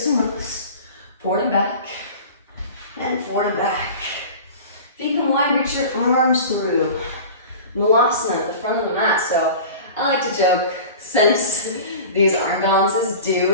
and rows. Forward and back. And forward and back. Feet come wide, reach your arms through. Malasana at the front of the mat. So I like to joke, since these arm balances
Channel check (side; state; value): both; inverted; correlation -0.37